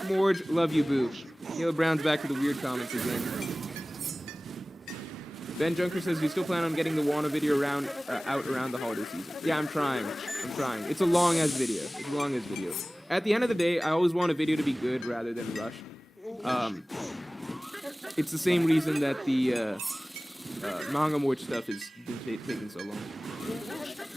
Morge. Love you, boo. Caleb Brown's back to the weird comments again. Ben Junker says, you still plan on getting the Wano video out around the holiday season? Yeah, I'm trying. It's a long-ass video. At the end of the day, I always want a video to be good rather than rushed. It's the same reason that the manga Morge stuff has been taking so long.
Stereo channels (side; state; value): both; normal; correlation 0.98